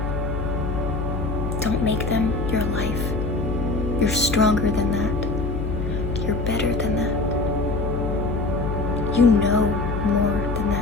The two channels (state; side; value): noise; left; hum, 3 dB below the sound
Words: Don't make them your life. You're stronger than that. You're better than that. You know more than